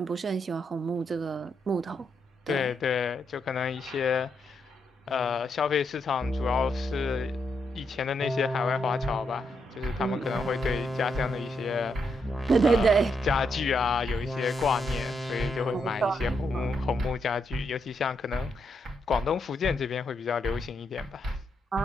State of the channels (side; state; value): both; normal; correlation 0.80